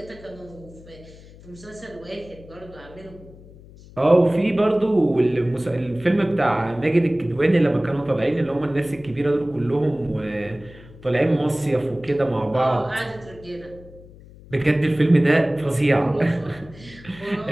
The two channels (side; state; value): left; noise; hum, 21 dB below the sound